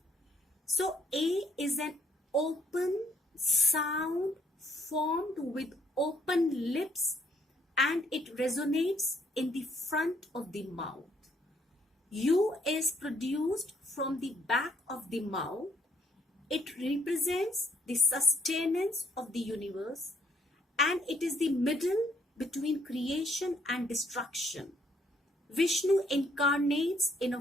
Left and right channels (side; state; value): both; normal; correlation 0.67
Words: So A is an open sound formed with open lips, and it resonates in the front of the mouth. U is produced from the back of the mouth. It represents the sustenance of the universe, and it is the middle between creation and destruction. Vishnu incarnates in a